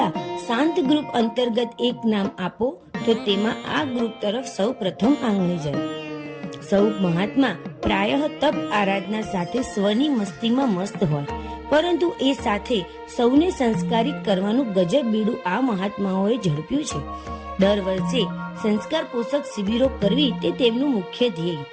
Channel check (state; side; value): identical; both; correlation 1.00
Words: શાંત ગ્રુપ અંતર્ગત એક નામ આપો તો તેમાં આ ગ્રુપ તરફ સૌ પ્રથમ આંગળી જાય. સૌ મહાત્મા પ્રાયઃ તપ આરાધના સાથે સ્વની મસ્તીમાં મસ્ત હોય, પરંતુ એ સાથે સૌને સંસ્કારિત કરવાનું ગજબ બીડું આ મહાત્માઓએ ઝડપ્યું છે. દર વર્ષે સંસ્કાર પોષક શિબિરો કરવી તે તેમનું મુખ્ય ધ્યેય.